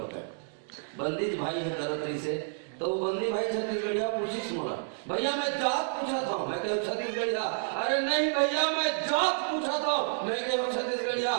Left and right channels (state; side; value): silent; left; digital silence